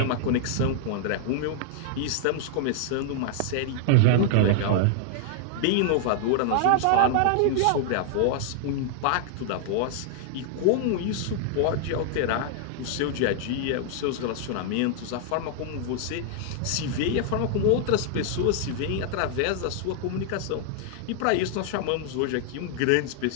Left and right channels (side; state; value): both; different; correlation -0.01